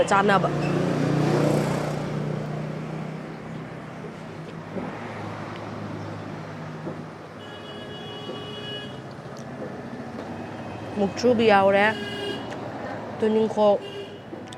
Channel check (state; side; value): identical; both; correlation 1.00